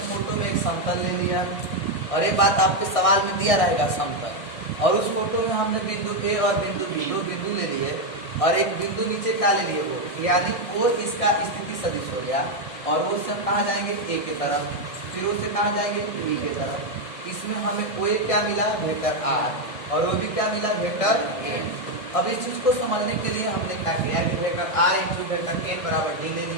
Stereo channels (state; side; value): late; right; 1.6 ms